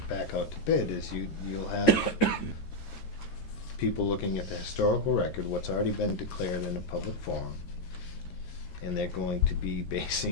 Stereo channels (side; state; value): right; late; 13 ms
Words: back out to bid is you'll have people looking at the historical record, what's already been declared in a public forum, and they're going to be